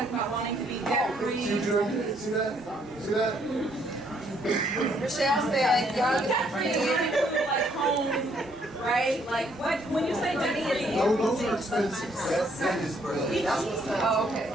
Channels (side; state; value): both; normal; correlation 0.68